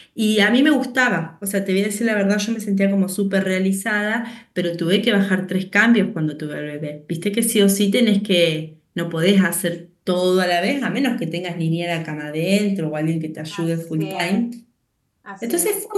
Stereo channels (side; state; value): both; identical; correlation 1.00